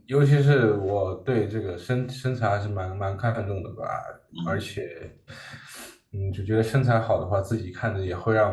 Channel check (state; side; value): identical; both; correlation 1.00